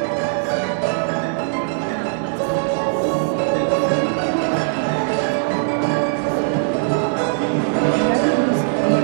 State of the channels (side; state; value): left; silent; digital silence